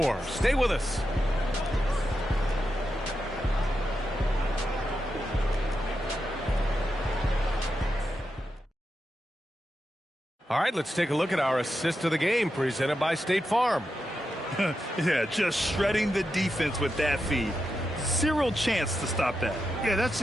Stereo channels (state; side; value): normal; both; correlation 0.87